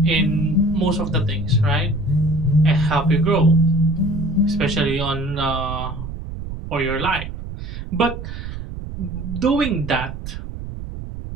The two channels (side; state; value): right; noise; rumble, 8 dB below the sound